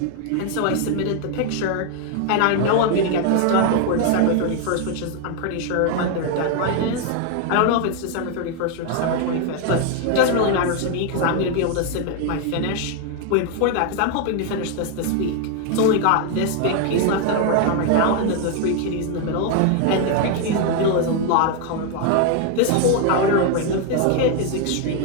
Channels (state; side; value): different; both; correlation 0.01